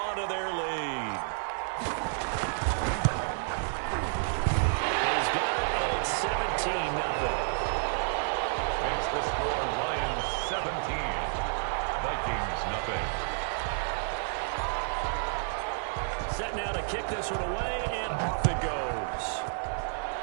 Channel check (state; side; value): silent; left; digital silence